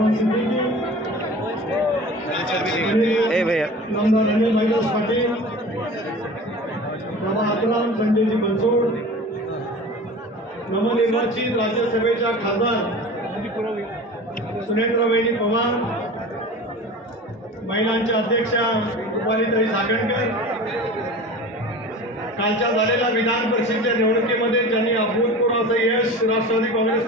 ए भैया संजयजी बनसोड नवनिर्वाचित राज्यसभेच्या खासदार सुनेत्रवहिनी पवार, महिलांच्या अध्यक्षा रुपालीताई सागणकर, कालच्या झालेल्या विधान परिषदेच्या निवडणुकीमध्ये ज्यांनी अभूतपूर्व असं यश राष्ट्रवादी काँग्रेस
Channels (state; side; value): normal; both; correlation 0.37